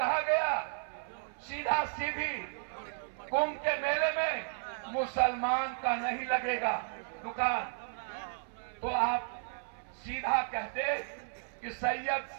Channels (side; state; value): left; silent; 55 dB below the other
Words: गया सीधा सीधी कुंभ के मेले में मुसलमान का नहीं लगेगा दुकान, तो आप सीधा कहते कि सैयद